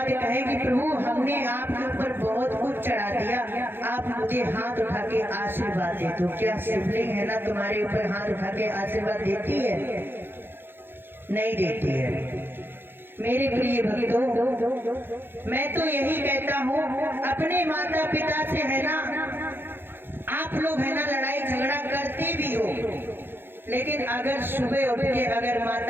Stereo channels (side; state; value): left; late; 0.10 ms